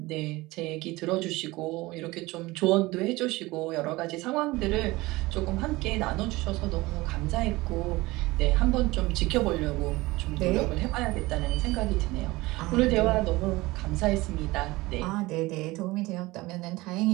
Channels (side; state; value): left; quieter; 20.6 dB